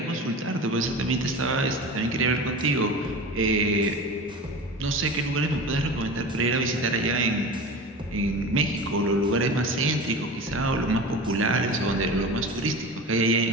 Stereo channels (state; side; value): normal; both; correlation 0.32